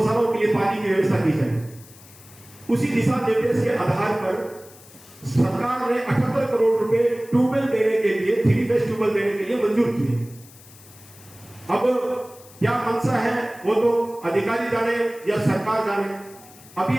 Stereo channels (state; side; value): noise; left; hiss, 22 dB below the sound